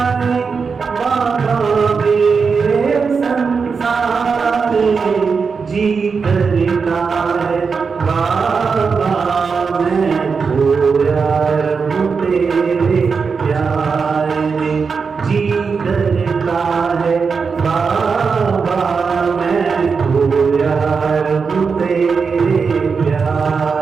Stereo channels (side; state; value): left; quieter; 5.3 dB